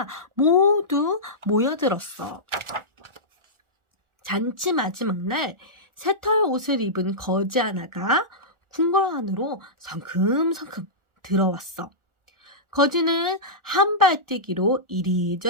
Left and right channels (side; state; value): left; late; 1.4 ms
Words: 모두 모여들었어. 잔치 마지막 날 새털 옷을 입은 거지 하나가 궁궐 안으로 성큼성큼 들어왔어. 거지는 한 발 뛰기로